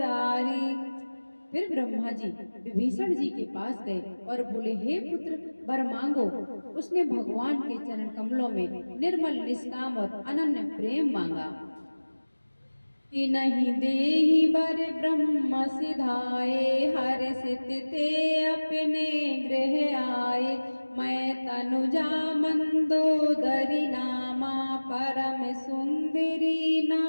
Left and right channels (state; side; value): inverted; both; correlation -1.00